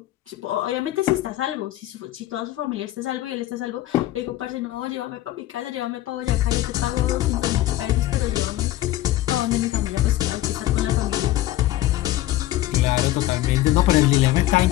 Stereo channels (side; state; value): right; quieter; 15.2 dB